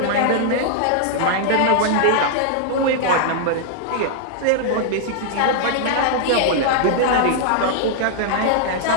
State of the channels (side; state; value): both; different; correlation -0.01